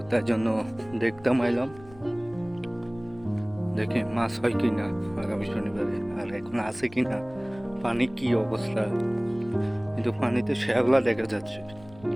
তাই জন্য দেখতাম আইলাম, দেখি মাছ হয় কিনা আগামী শনিবারে, আর এখন আছে কিনা, পানি কি অবস্থা। কিন্তু পানিতে শ্যাওলা দেখা যাচ্ছে।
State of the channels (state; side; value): noise; left; rumble, 22 dB below the sound